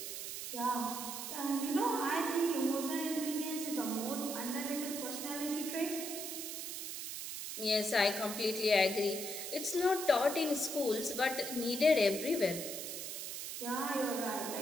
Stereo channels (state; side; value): noise; right; hiss, 6 dB below the sound